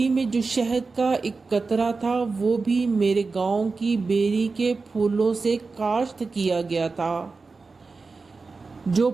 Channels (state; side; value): quieter; left; 4.2 dB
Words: میں جو شہد کا ایک قطرہ تھا وہ بھی میرے گاؤں کی بیری کے پھولوں سے کاشت کیا گیا تھا۔ جو